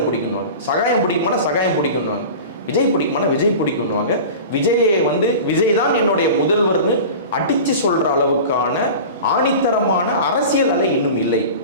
பிடிக்கணுவாங்க, சகாயம் பிடிக்குமானா சகாயம் பிடிக்கணுவாங்க, விஜய் பிடிக்குமானா விஜய் பிடிக்கணுவாங்க. விஜயை வந்து விஜய் தான் என்னுடைய முதல்வர்னு அடித்து சொல்கிற அளவுக்கான ஆணித்தரமான அரசியல் அலை இன்னும் இல்லை.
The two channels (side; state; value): both; inverted; correlation -0.34